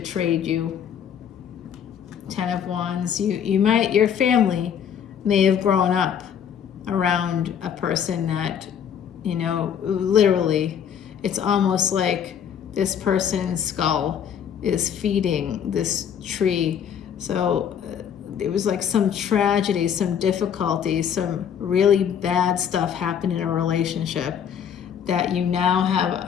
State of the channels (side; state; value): right; quieter; 8.4 dB